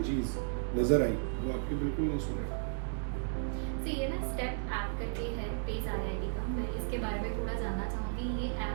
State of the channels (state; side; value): silent; left; digital silence